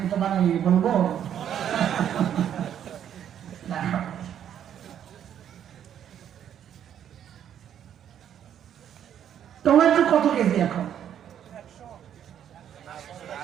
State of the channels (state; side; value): quieter; left; 9.7 dB